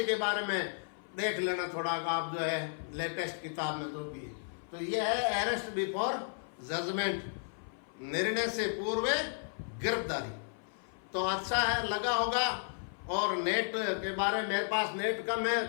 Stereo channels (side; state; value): right; silent; 55 dB below the other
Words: के बारे में देख लेना थोड़ा, आप जो है लेटेस्ट किताब में तो भी। तो ये है अरेस्ट बिफोर जजमेंट, निर्णय से पूर्व गिरफ्तारी। तो अच्छा है, लगा होगा। और नेट के बारे में मेरे पास नेट कम